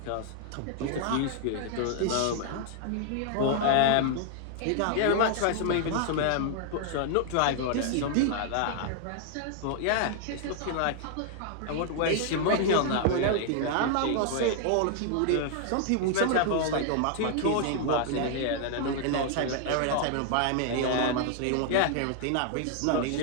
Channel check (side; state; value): both; different; correlation 0.00